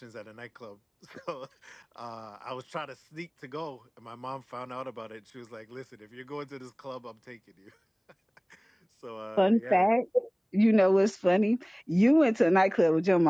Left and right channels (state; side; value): identical; both; correlation 1.00